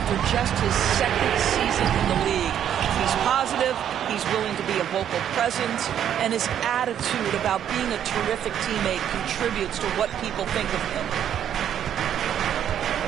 just his second season in the league. He's positive, he's willing to be a vocal presence, and his attitude about being a terrific teammate contributes to what people think of him.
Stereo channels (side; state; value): left; quieter; 9.8 dB